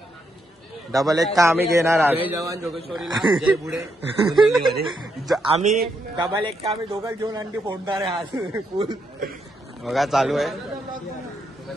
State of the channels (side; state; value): both; normal; correlation 0.79